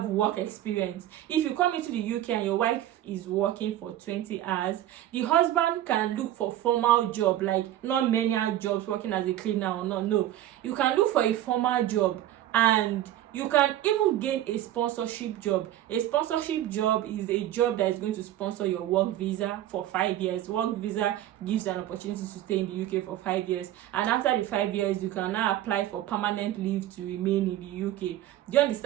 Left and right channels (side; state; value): left; quieter; 13.1 dB